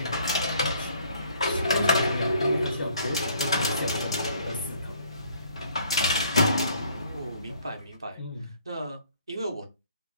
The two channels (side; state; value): both; inverted; correlation -0.61